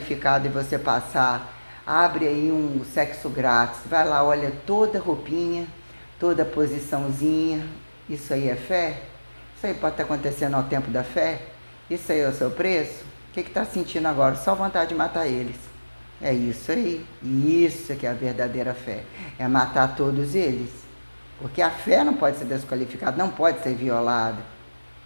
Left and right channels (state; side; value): inverted; both; correlation -1.00